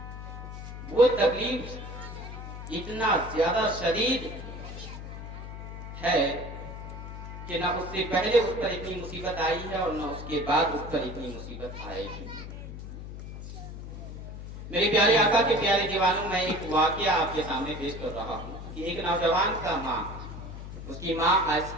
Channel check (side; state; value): left; noise; hum, 10 dB below the sound